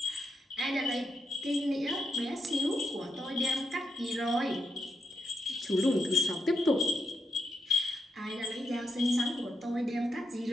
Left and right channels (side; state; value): both; normal; correlation 0.83